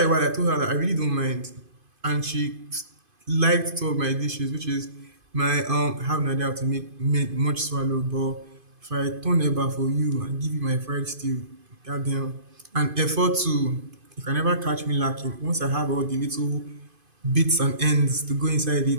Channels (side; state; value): left; late; 2.5 ms